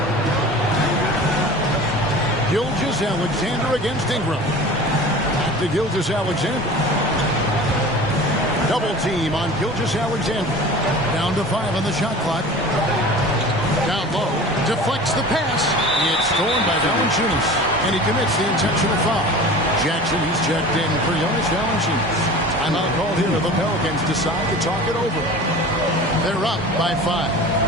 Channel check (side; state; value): both; normal; correlation 0.38